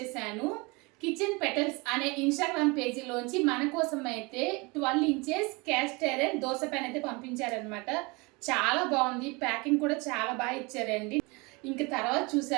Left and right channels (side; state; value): left; quieter; 26.8 dB